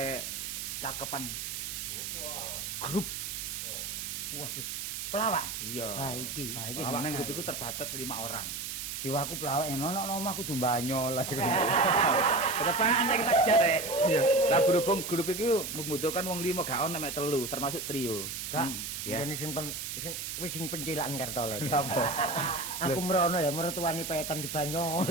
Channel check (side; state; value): right; noise; hiss, 5 dB below the sound